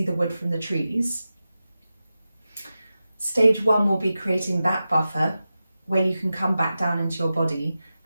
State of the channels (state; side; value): inverted; both; correlation -0.93